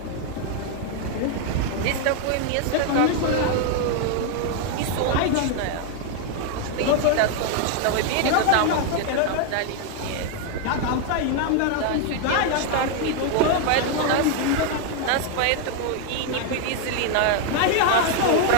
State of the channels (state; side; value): different; both; correlation 0.00